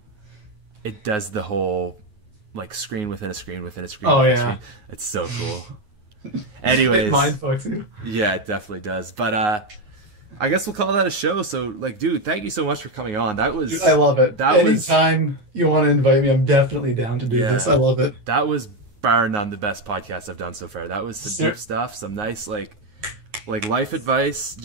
does the whole like screen within a screen within a screen. Oh, within a yeah. screen. It's so cool. Anyways, It mind fucks you. yeah, it definitely does. But I guess we'll call that a show. So like, dude, thank you so much for coming on. That was Dude, I love it. That was Anytime you want to invite me, I'm definitely down to do this. I love it. That was bar none the best podcast I've done so far. That was some deep stuff, some nice like life advice,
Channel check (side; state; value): left; late; 9.5 ms